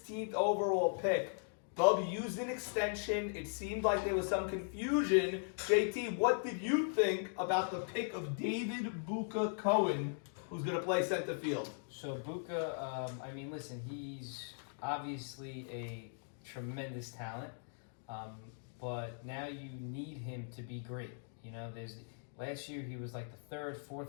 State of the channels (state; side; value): silent; right; digital silence